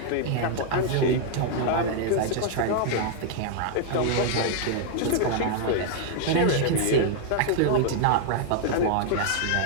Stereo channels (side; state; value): both; different; correlation 0.00